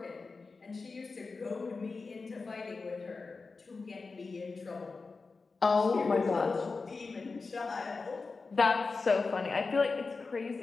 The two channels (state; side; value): quieter; right; 4.2 dB